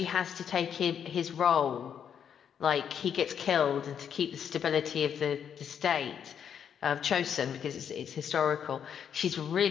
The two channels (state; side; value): quieter; right; 8.2 dB